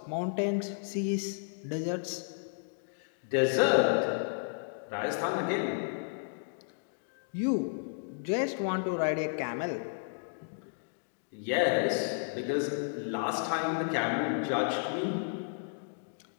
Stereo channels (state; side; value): silent; right; digital silence